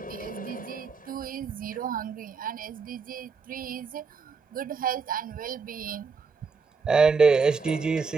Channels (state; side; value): quieter; left; 5.1 dB